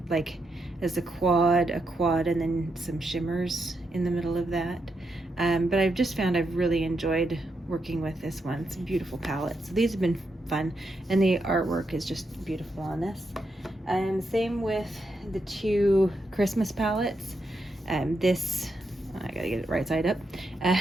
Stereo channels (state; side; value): normal; both; correlation 0.83